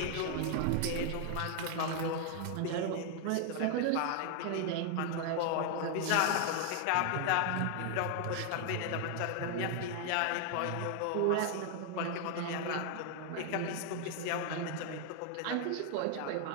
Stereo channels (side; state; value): both; different; correlation 0.00